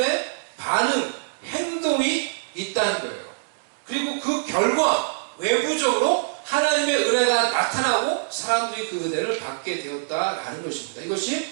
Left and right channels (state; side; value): silent; left; digital silence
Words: 반응, 행동이 있다는 거예요. 그리고 그 결과 외부적으로 하나님의 은혜가 나타나고 사람들이 그 은혜를 받게 되었다라는 것입니다. 이것이